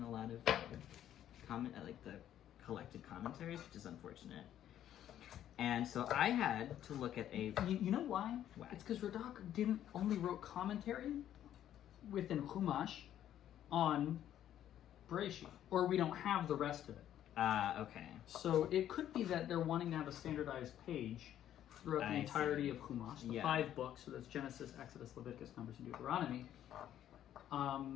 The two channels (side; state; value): right; quieter; 11.2 dB